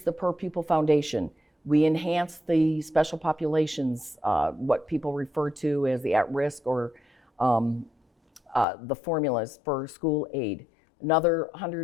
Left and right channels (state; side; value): drops out; right; at 8.7 s